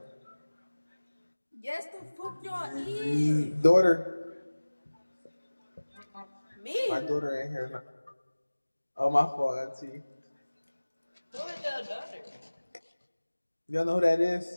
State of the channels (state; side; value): inverted; both; correlation -1.00